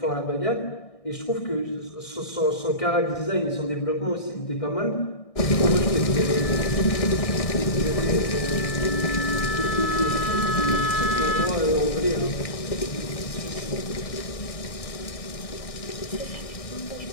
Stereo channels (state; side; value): late; right; 1.6 ms